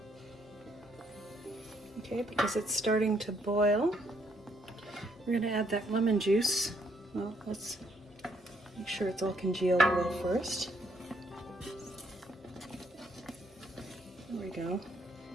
Okay, because it's starting to boil, we're going to add that lemon juice. Well, let's make sure it's all congealed a little first. There we go.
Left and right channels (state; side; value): normal; both; correlation 0.71